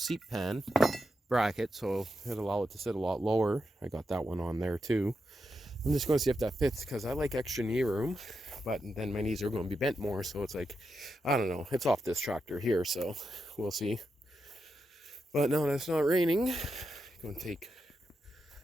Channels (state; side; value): normal; both; correlation 0.86